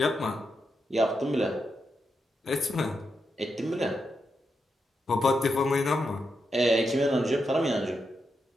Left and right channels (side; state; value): both; normal; correlation 0.85